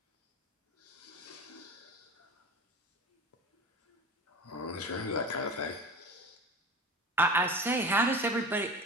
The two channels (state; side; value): normal; both; correlation 0.33